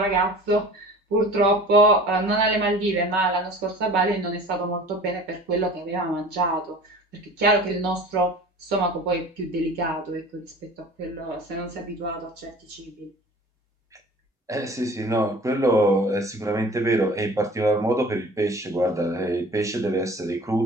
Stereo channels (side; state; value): both; normal; correlation 0.42